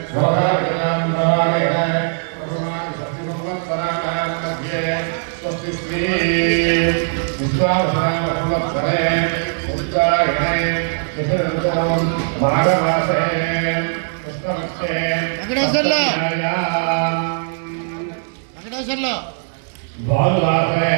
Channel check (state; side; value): silent; left; 66 dB below the other